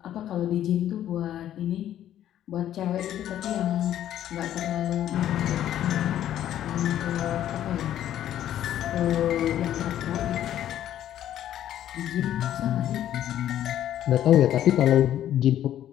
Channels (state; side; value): quieter; right; 11.6 dB